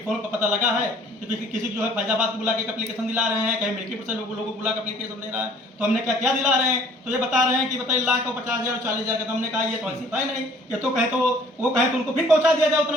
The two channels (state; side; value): normal; both; correlation 0.55